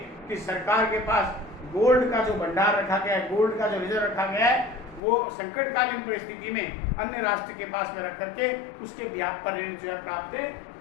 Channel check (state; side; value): drops out; right; at 5.0 s